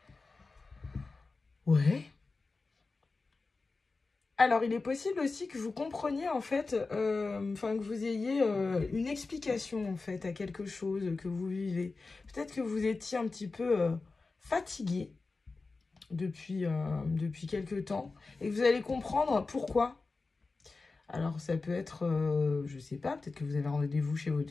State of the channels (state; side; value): quieter; right; 3.9 dB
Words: Ouais. Alors, il est possible aussi que vous compreniez, en fait, que vous ayez une explication, en fait, à quelque chose que vous vivez. Peut-être que vous étiez un petit peu fatigué depuis quelque temps et que vous allez comprendre pourquoi. Alors, ça peut être, je sais pas, peut-être que vous avez rendez-vous chez